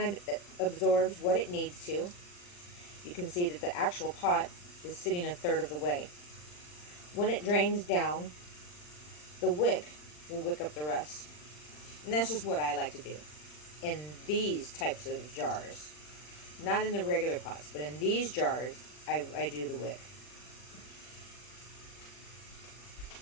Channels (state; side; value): late; right; 40 ms